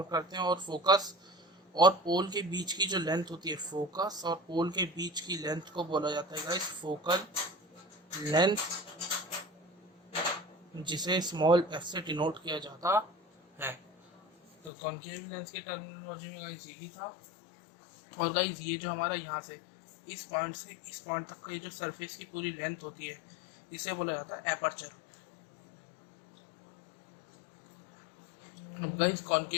करते हैं। और फोकस और पोल के बीच की जो लेंथ होती है, फोकस और पोल के बीच की लेंथ को बोला जाता है गाइस फोकल लेंथ, जिसे स्मॉल एफ से डिनोट किया जाता है। तो कॉन्केव लेंस की टर्मिनोलॉजी में गाइस यही था। और गाइस ये जो हमारा यहाँ से इस पॉइंट से इस पॉइंट तक का ये जो सरफेस की पूरी लेंथ होती है, इसे बोला जाता है एपर्चर। अब गाइस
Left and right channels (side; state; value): right; drops out; at 14.7 s